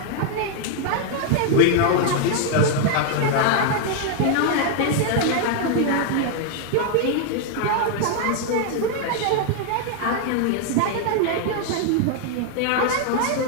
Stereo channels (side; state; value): both; different; correlation 0.00